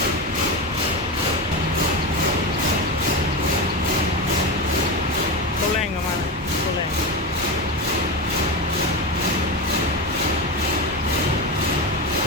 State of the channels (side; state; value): both; normal; correlation 0.18